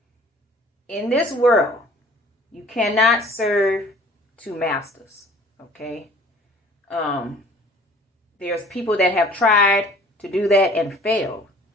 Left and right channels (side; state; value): both; normal; correlation 0.51